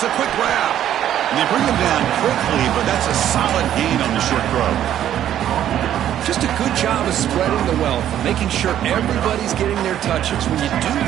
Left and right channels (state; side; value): quieter; left; 11.1 dB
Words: a quick grab. And they bring him down quickly, but that's a solid gain on the short throw. Just a good job of spreading the wealth, making sure everybody's getting their touches. When you do